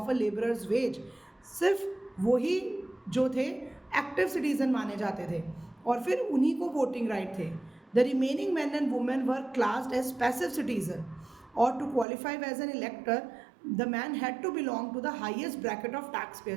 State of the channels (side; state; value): left; drops out; at 12.1 s